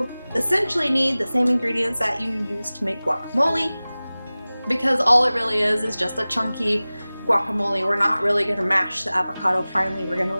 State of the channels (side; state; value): both; inverted; correlation -0.98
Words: essentially need the same ingredients that you use to make guacamole, because all it really is just a chunky guacamole. We're not really going to mash the avocado finely. We're going to